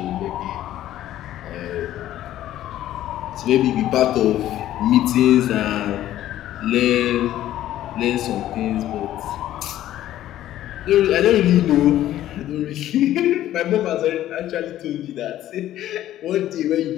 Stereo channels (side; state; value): right; quieter; 13.1 dB